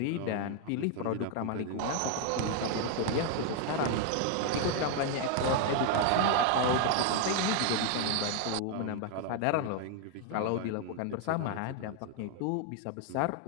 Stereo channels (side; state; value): both; different; correlation 0.00